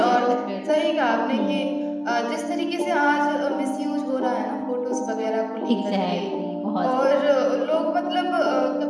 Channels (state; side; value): identical; both; correlation 1.00